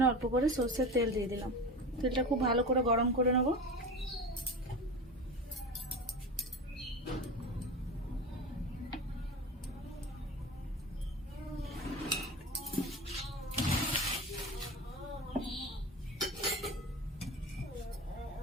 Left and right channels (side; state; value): both; normal; correlation 0.29